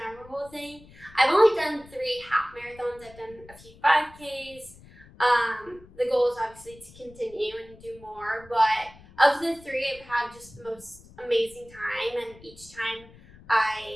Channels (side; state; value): left; noise; rumble, 22 dB below the sound